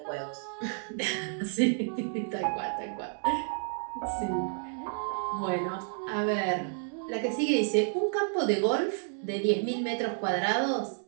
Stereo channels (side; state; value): left; silent; 57 dB below the other